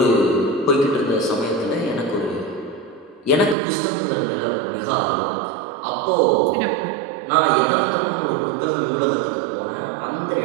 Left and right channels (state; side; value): drops out; left; at 3.6 s